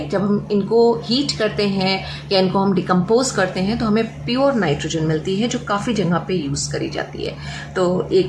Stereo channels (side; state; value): both; identical; correlation 1.00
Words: जब हम इनको हीट करते हैं या इनको हम डिकम्पोज करते हैं तो हमें प्योर नाइट्रोजन मिलती है, जो काफ़ी जगह पे यूज़ करी जाती है। तो